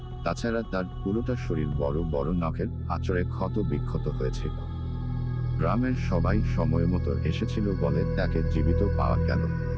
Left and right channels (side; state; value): both; identical; correlation 1.00